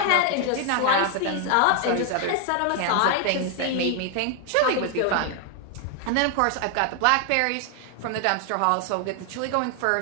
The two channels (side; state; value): both; different; correlation 0.00